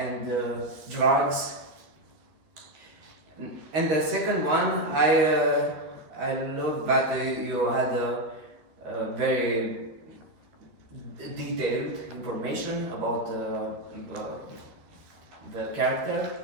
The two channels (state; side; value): late; left; 13 ms